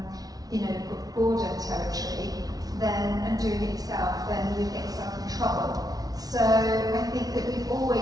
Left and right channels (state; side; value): late; left; 0.18 ms